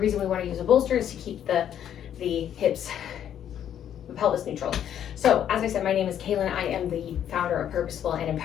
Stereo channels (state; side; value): quieter; right; 9.9 dB